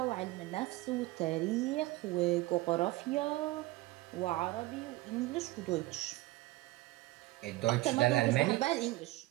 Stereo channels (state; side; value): quieter; left; 19.2 dB